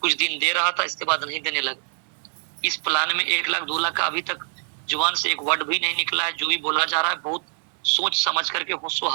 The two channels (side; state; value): left; silent; 62 dB below the other